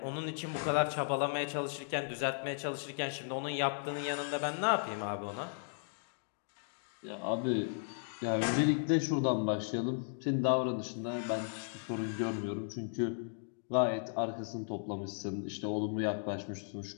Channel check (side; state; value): right; silent; digital silence